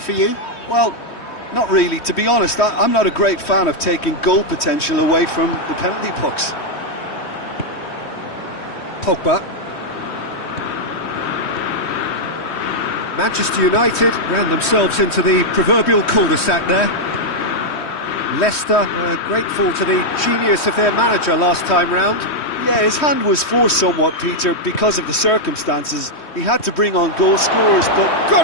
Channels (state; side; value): late; right; 3.1 ms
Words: for you? Well, not really. To be honest, I'm not a great fan of taking goal potential away from the penalty pucks. Pogba. Manchester United ran themselves into the proverbial cul-de-sac there. Leicester were grateful to the genius of their manager last time round. Yeah, his hand was forced somewhat, Peter, because of the circumstances. He had to bring on goal scorers, but...